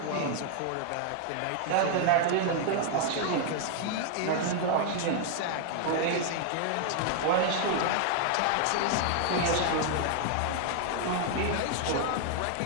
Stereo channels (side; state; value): both; different; correlation 0.00